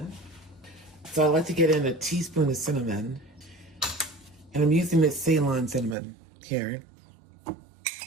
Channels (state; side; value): drops out; left; at 6.0 s